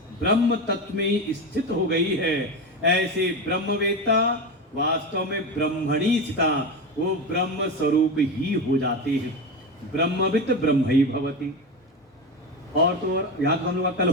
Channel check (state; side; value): normal; both; correlation 0.20